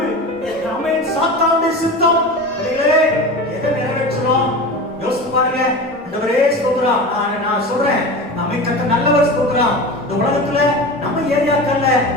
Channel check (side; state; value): both; normal; correlation 0.30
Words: அவன் சாத்தானுடைய சித்தம். எதை நிறைவேற்றணும் யோசித்து பாருங்க. ஆண்டவரே ஸ்தோத்திரம். நான் சொல்றேன், நம்மை கத்த நல்லவர். ஸ்தோத்திரம். இந்த உலகத்துல நம்ம ஏரியாக்கள்ல